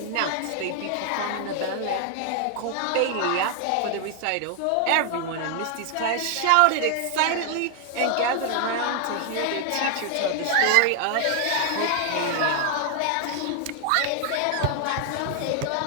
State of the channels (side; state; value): both; different; correlation 0.00